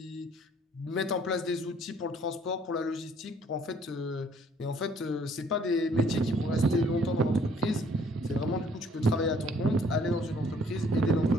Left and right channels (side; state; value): both; normal; correlation 0.61